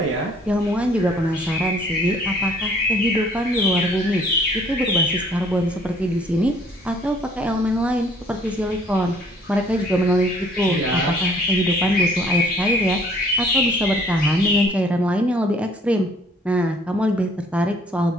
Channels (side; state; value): both; normal; correlation 0.59